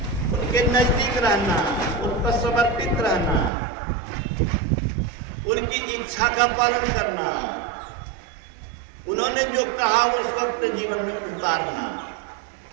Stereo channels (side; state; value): left; drops out; at 3.5 s